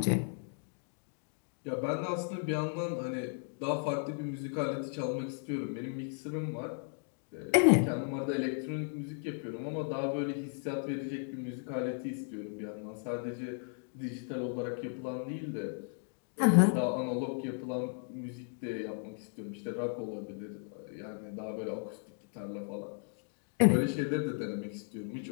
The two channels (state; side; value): silent; right; 54 dB below the other